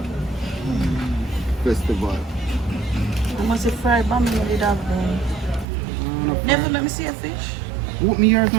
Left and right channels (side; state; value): left; drops out; at 5.7 s